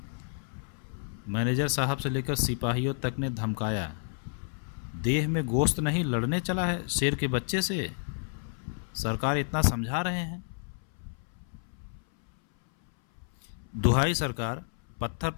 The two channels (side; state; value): right; silent; 58 dB below the other